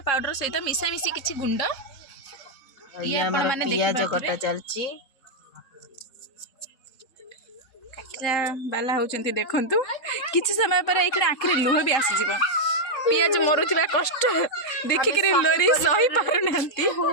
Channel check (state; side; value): late; right; 3.8 ms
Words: पाउडर सहित मिसा मिसी किछि गुंड ये आपण माने देखि पियाज कटा चलची काटरा बाला होचंती देखंतु किछि समय पर एखने आखिर लुह भी आसी जीव पियाज मरुथिबा कष्ट देखि के लोरी सही पारु नांती